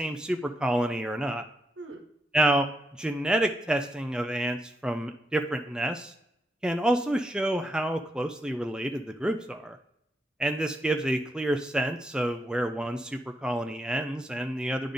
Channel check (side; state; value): both; normal; correlation 0.81